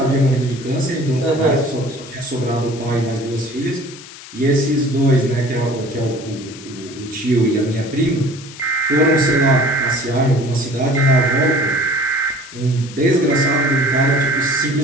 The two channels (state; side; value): noise; left; hiss, 16 dB below the sound